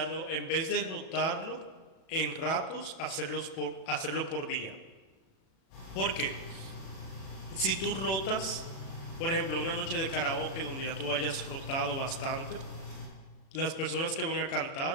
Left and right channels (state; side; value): late; right; 37 ms